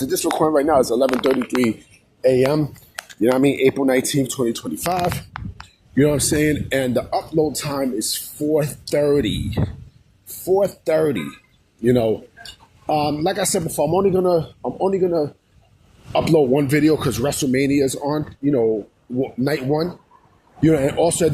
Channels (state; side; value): identical; both; correlation 1.00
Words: of this recording right now, it's 11:33 a.m. You know what I mean? April 19th, 2025. You know what I'm saying? And the upload time is 4:30. 4:30. You know, like I said before, I'm only gonna upload one video because WrestleMania is on. You know, night one. You know, and also